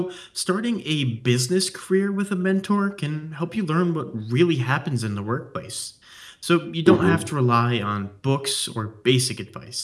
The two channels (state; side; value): identical; both; correlation 1.00